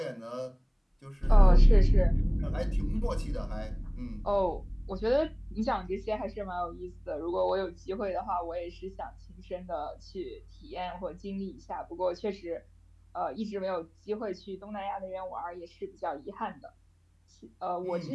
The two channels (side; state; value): both; identical; correlation 1.00